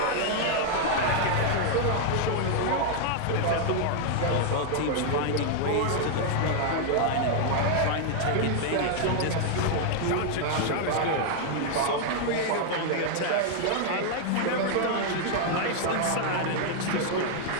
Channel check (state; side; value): different; both; correlation 0.00